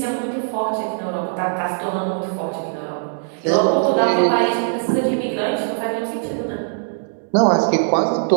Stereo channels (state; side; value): silent; left; digital silence